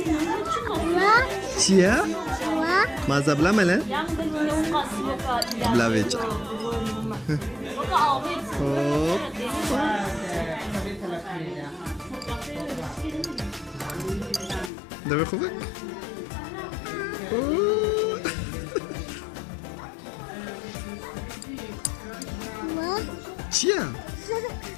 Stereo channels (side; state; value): right; drops out; at 14.7 s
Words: Cie? Ma zablamele? Blawiecie. Hop. Dawaj chówek. Cie?